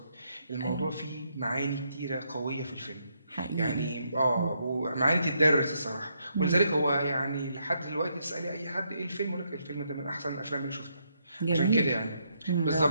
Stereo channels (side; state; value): both; inverted; correlation -0.76